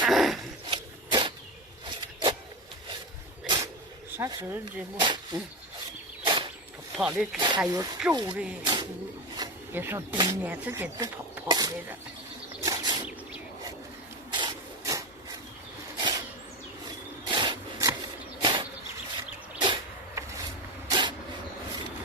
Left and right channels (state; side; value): normal; both; correlation 0.19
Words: 啥时候这么？跑的还有皱的，也说今年自己都跑来了。